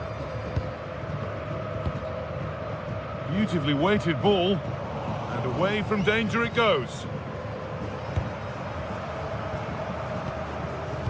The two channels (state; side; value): identical; both; correlation 1.00